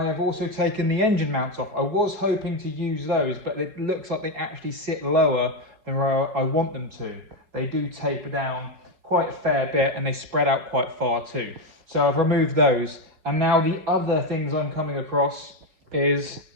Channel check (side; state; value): left; late; 4.8 ms